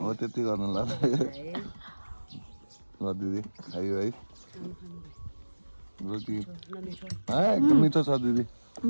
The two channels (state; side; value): inverted; both; correlation -1.00